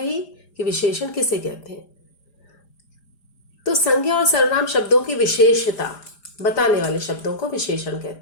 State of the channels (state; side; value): late; right; 5.0 ms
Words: कि विशेषण किसे कहते हैं। तो संज्ञा और सर्वनाम शब्दों की विशेषता बताने वाले शब्दों को विशेषण